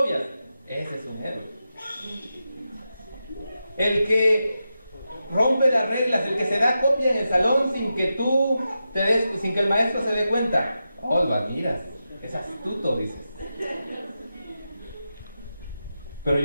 ese es un héroe. El que rompe las reglas, el que se da copia en el salón sin que sin que el maestro se dé cuenta. Lo admiras, es astuto, dices. Pero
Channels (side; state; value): both; inverted; correlation -0.90